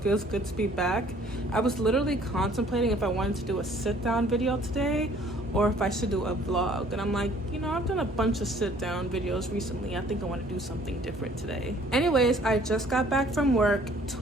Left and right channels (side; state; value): both; normal; correlation 0.57